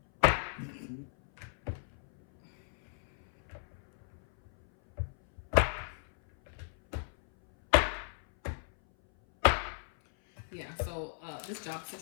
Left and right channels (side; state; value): right; silent; 55 dB below the other